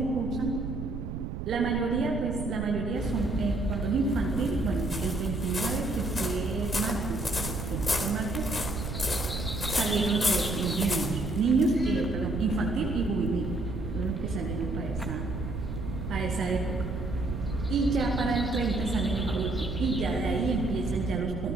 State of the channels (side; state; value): right; noise; rumble, 5 dB below the sound